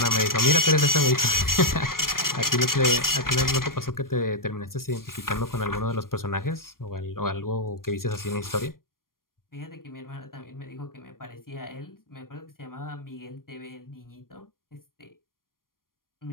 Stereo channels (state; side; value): late; right; 0.91 ms